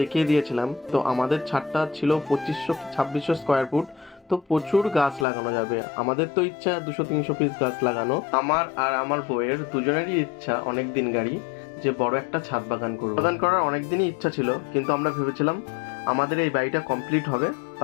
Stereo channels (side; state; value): right; drops out; at 5.2 s